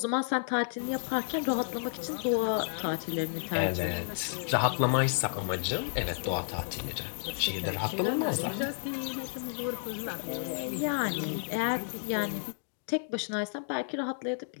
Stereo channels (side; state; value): right; silent; digital silence